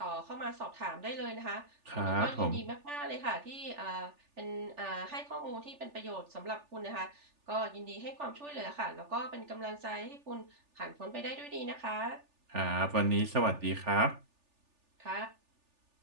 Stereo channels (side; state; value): left; late; 3.4 ms